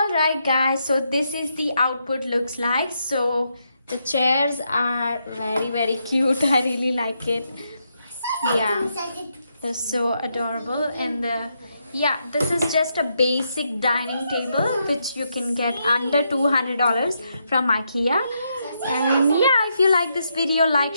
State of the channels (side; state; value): both; inverted; correlation -0.80